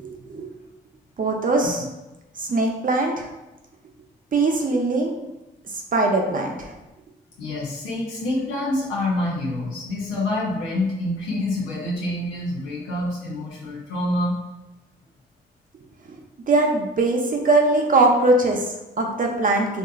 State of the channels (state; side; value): normal; both; correlation 0.38